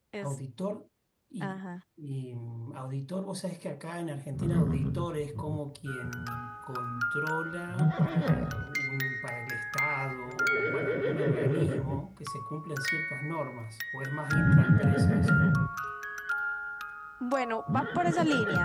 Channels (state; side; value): identical; both; correlation 1.00